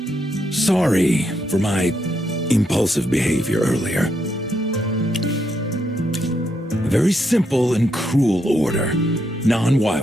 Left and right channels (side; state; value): both; normal; correlation 0.79